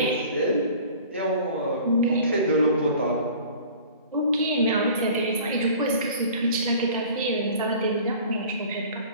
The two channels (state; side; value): inverted; both; correlation -0.45